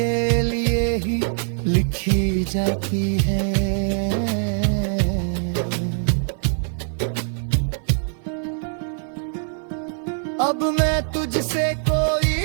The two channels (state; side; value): silent; left; 56 dB below the other